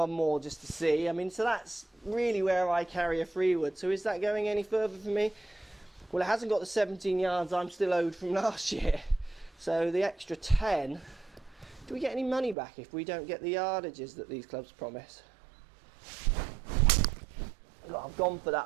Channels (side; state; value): left; drops out; at 12.6 s